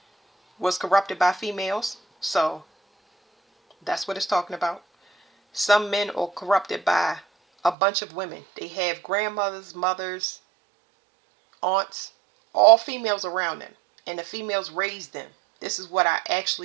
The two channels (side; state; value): left; drops out; at 7.8 s